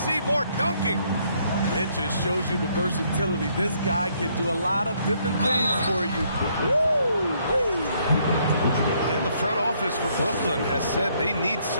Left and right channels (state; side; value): inverted; both; correlation -0.69